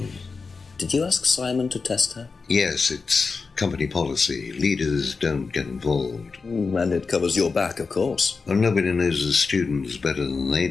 Did you ask Simon to test her? Yes, it's company policy. Leaders don't get involved. And it covers your back, of course. Well, nobody knows the students better than they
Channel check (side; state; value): right; quieter; 4.6 dB